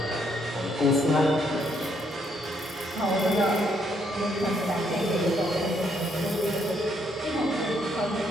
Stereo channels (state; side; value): normal; both; correlation 0.72